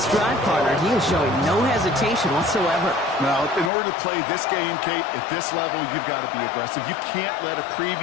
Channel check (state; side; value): drops out; right; at 3.7 s